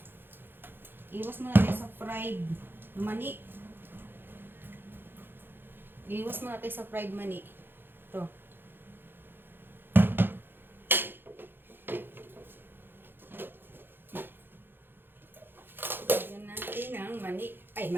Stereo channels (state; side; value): late; left; 0.10 ms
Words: Iwas mo natin sa fried mani. Iwas mo natin sa fried mani. Ito. Lagyan natin ng mani. Ay,